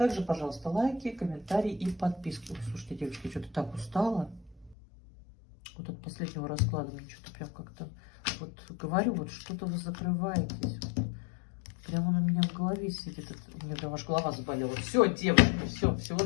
пожалуйста, лайки, комментарии и подписки. Ой, слушайте, девочки, что-то так устала. Вот от последнего расклада мне что-то прям как-то... Вот говорю, вот что-то вы закрываетесь. Прямо он у меня в голове сидит. У меня прям аж голова заболела. Все, девочки, все, всего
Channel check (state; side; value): drops out; right; at 4.8 s